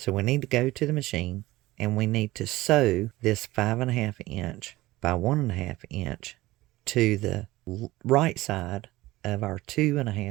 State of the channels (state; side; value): quieter; left; 18.3 dB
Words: we need to go to the machine, and we need to sew this 5.5 inch by 1.5 inch to the right side of our